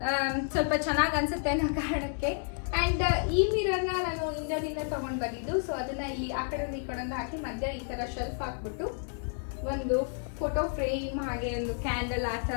ಸ್ವಲ್ಪ ಚೆನ್ನಾಗಿ ಅನ್ಸುತ್ತೆ ಅನ್ನೋ ಕಾರಣಕ್ಕೆ. ಅಂಡ್ ಈ ಮಿರರ್ ನ ನಾನು ಇಂಡಿಯಾದಿಂದ ತಗೊಂಡ್ ಬಂದಿದ್ದು. ಸೊ ಅದನ್ನ ಇಲ್ಲಿ ಆ ಕಡೆ ಈ ಕಡೆ ಹಾಕಿ ಮಧ್ಯ ಈ ತರ ಶೆಲ್ಫ್ ಹಾಕ್ಬಿಟ್ಟು ಒಂದು ಫೋಟೋ ಫ್ರೇಮ್ ಹಾಗೆ ಒಂದು ಕ್ಯಾಂಡಲ್ ಆ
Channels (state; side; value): silent; right; 57 dB below the other